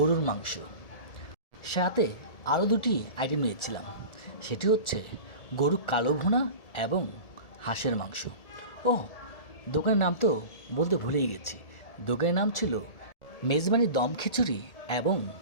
মাংস, সাথে আরও দুটি আইটেম নিয়েছিলাম। সেটি হচ্ছে গরুর কালো ভুনা এবং হাঁসের মাংস। ও, দোকানের নাম তো বলতে ভুলেই গেছি। দোকানের নাম ছিল মেজবানি দম খিচুড়ি এবং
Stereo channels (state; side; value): late; right; 1.7 ms